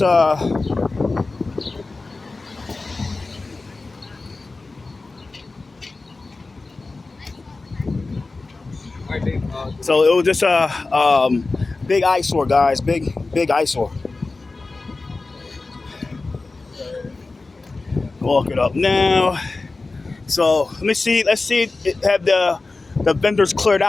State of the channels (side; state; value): right; quieter; 3.6 dB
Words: so it was just a big eyesore, guys. Big eyesore. Walk it up now. So let's see. Have the vendors cleared